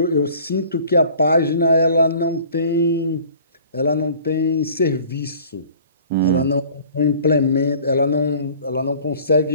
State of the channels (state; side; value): inverted; both; correlation -0.49